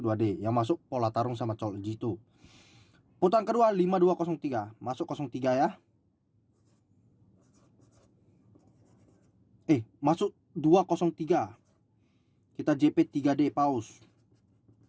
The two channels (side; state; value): both; identical; correlation 1.00